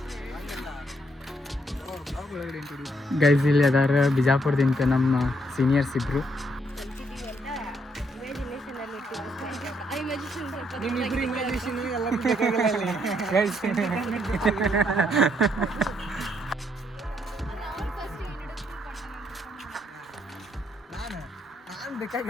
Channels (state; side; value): normal; both; correlation 0.73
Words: ಗೈಸ್. ಇಲ್ಲಿ ಅದಾರ ಬಿಜಾಪುರದಿಂದ ನಮ್ಮ ಸೀನಿಯರ್ಸ್ ಇಬ್ರು. ನಾನು